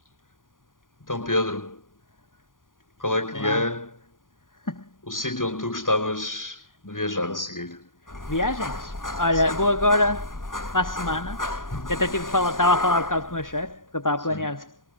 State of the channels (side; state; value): right; late; 0.89 ms